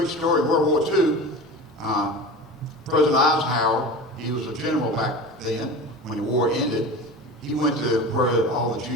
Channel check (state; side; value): normal; both; correlation 0.32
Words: story. World War II, President Eisenhower, he was a general back then when the war ended. He went to where all the